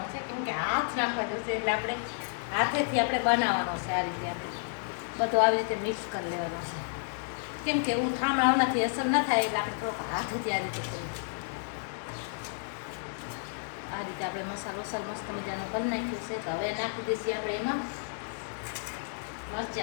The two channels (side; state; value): right; silent; digital silence